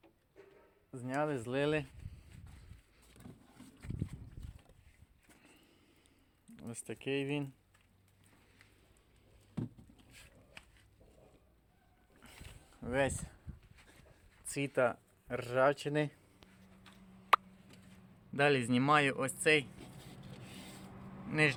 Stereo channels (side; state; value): both; identical; correlation 1.00